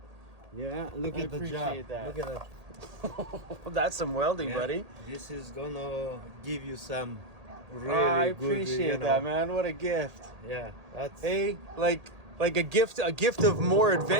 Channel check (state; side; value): late; left; 1.8 ms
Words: Yeah, look at the job. That. Look at that. That's some welding, Yeah, buddy. This is gonna give you some really I good, appreciate that, man. What a gift. Yeah, that's Hey, like a gift of more